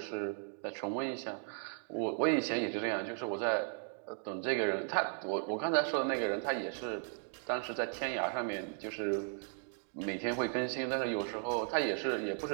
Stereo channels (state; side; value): silent; left; 54 dB below the other